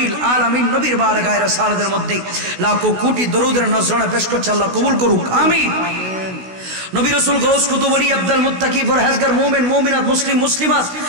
আলামিন নবীর বারগায়ে রাসালাতের মধ্যে লাখো কোটি দরুদের নজরানা পেশ করছে। আল্লাহ কবুল করুক, আমিন। নবী রাসূল গাউস কুতুব ওলি আব্দুল মুত্তাকি ফরহেজগার মুমিন মুমিনাত মুসলিম মুসলিমাত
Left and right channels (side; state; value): left; late; 16 ms